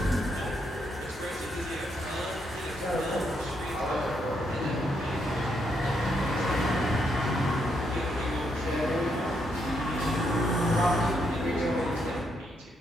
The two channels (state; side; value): normal; both; correlation 0.77